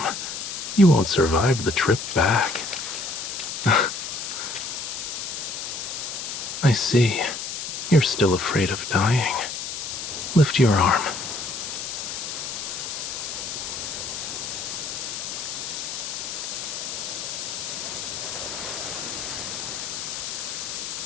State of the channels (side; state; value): left; noise; hiss, 5 dB below the sound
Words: You won't survive the trip back. I see. You're still afraid of dying. Lift your arm.